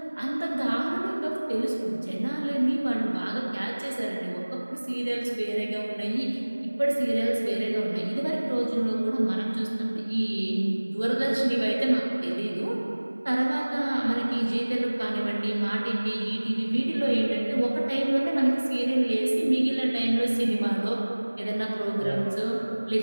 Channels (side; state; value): both; inverted; correlation -1.00